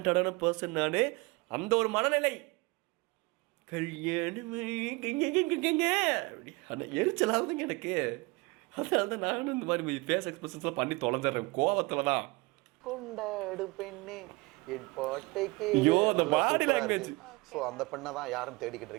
பர்சன் நான், அந்த ஒரு மனநிலை. கல்யாணமே எரிச்சலாகுதுங்க எனக்கு. அதனால தான் நானும் இந்த மாதிரி ஃபேஸ் எக்ஸ்பிரஷன்ஸ்லாம் பண்ணி தொலைஞ்சிட்றேன் கோவத்தில் தான். கொண்டாடு பெண்ணே என் பாட்டைக்கு. ஐயோ அந்த பாடி லாங்குவேஜ். ஸோ அந்த பெண்ணை தான் யாரும் தேடிக்கிட்டு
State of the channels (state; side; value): quieter; left; 25.1 dB